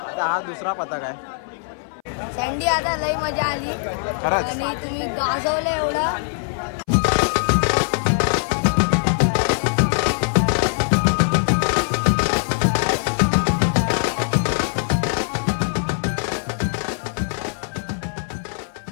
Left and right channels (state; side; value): silent; right; 61 dB below the other